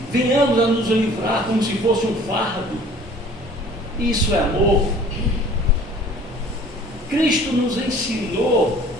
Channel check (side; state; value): both; normal; correlation 0.50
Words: venhamos a nos livrar como se fosse um fardo. Isso é amor. Cristo nos ensinou